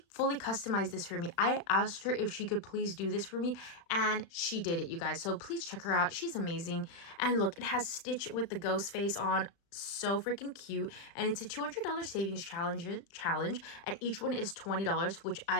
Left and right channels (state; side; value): late; right; 35 ms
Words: fully customized this for me. I asked her if she could please do this for me, and she did it, you guys. So please check her out. She's amazing. And look, it has Stitch with the ghost face on. So freaking cute. And it's a $200 savings challenge, and each one is $20, which